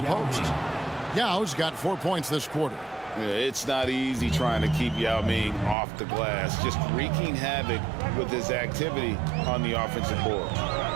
post. Yao's got 4 points this quarter. Yeah, it's not easy trying to keep Yao Ming off the glass, just wreaking havoc with his activity on the offensive board.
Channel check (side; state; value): left; drops out; at 5.8 s